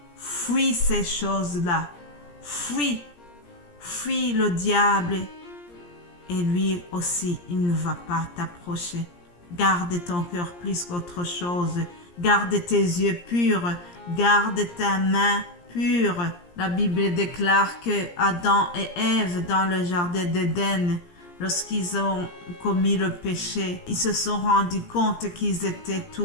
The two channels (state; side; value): late; right; 17 ms